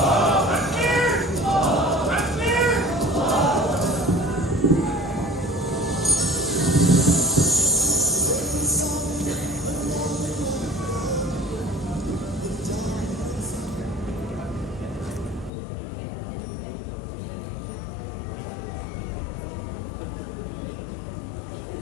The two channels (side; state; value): right; drops out; at 15.5 s